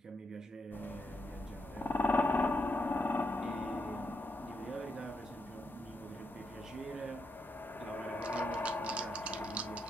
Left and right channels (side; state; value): both; normal; correlation 0.80